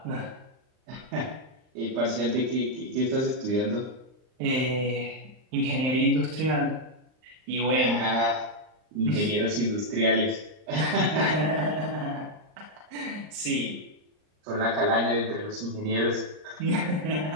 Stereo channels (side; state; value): left; late; 39 ms